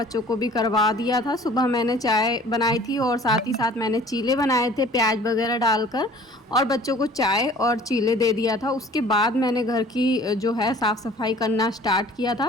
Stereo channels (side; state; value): both; normal; correlation 0.49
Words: को भी करवा दिया था। सुबह मैंने चाय बनाई थी और साथ ही साथ मैंने चीले बनाए थे प्याज वगैरह डालकर, और बच्चों को चाय और चीले दे दिया था। उसके बाद मैंने घर की जो है साफ़ सफाई करना स्टार्ट किया